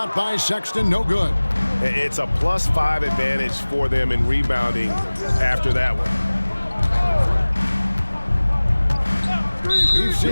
by Sexton, no good. It's a +5 advantage for them in rebounding after that one. We've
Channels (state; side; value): inverted; both; correlation -1.00